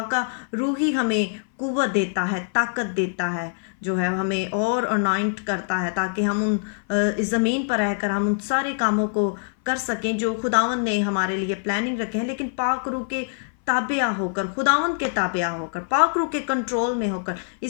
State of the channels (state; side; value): silent; right; 59 dB below the other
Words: का रूह ही हमें कुव्वत देता है, ताकत देता है, जो है हमें और अनॉइंट करता है ताकि हम इस ज़मीन पर रहकर हम उन सारे कामों को कर सकें जो खुदावंद ने हमारे लिए प्लानिंग रखे हैं। लेकिन पाक रूह के ताबिया होकर, खुदावंद के ताबिया होकर, पाक रूह के कंट्रोल में होकर।